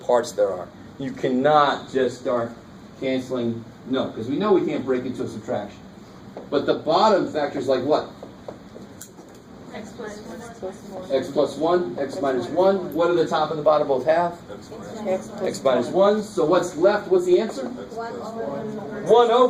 parts there are. You cannot just start canceling, no, because we know we can't break into a subtraction. But the bottom factors like what? X plus 1. X plus 1, x minus 1. What do the top and the bottom both have? X minus 1. So what's left? What's the answer? 1 over 1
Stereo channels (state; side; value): identical; both; correlation 1.00